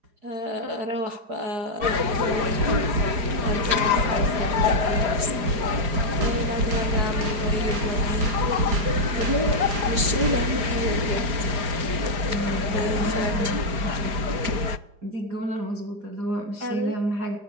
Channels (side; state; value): left; late; 4.9 ms